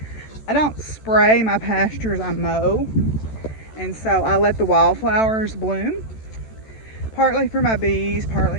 I don't spray my pastures, I mow. And so I let the wildflowers bloom, partly for my bees,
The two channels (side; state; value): right; late; 14 ms